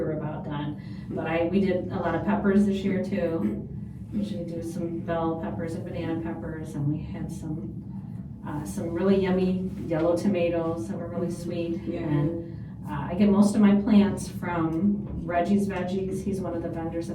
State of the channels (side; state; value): both; identical; correlation 1.00